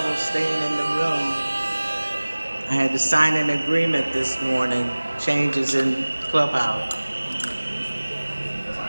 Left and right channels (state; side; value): inverted; both; correlation -1.00